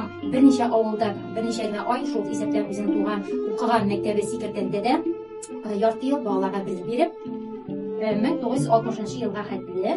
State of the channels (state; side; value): identical; both; correlation 1.00